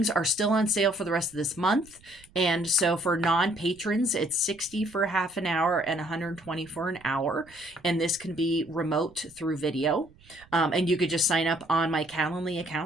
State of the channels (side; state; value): right; noise; rumble, 27 dB below the sound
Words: are still on sale for the rest of this month. And so for non-patrons, it's $60 for half an hour and $120 for an hour. And this can be remote through video. And you could just sign up on my Calendly